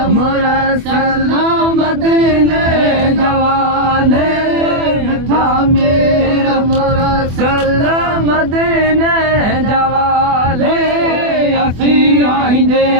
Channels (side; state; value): left; late; 24 ms